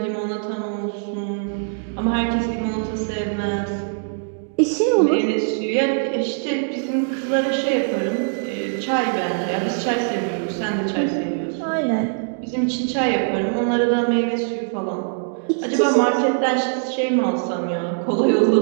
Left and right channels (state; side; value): silent; left; digital silence